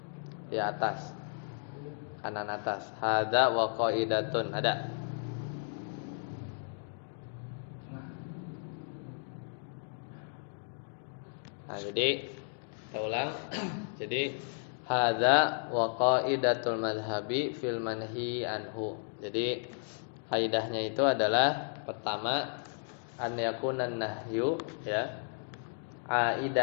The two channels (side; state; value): right; silent; digital silence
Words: di atas. Kanan atas. Hadza wa qaidatun, ada. Nah, jadi kita ulang. Jadi hadza wa qaidatul madhhabi fil manhi anhu. Jadi kaidahnya itu adalah pertama an yakunan nahyu ya